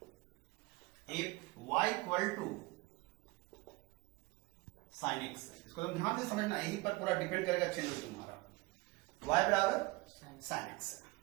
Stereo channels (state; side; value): quieter; left; 22.9 dB